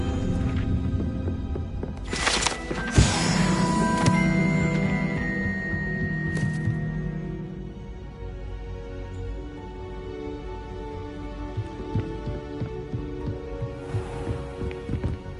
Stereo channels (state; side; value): identical; both; correlation 1.00